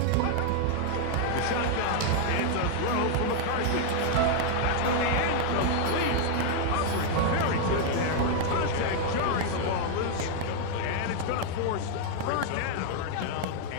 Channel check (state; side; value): different; both; correlation 0.00